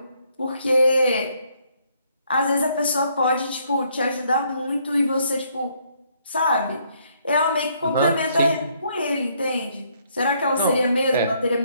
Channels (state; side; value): inverted; both; correlation -0.69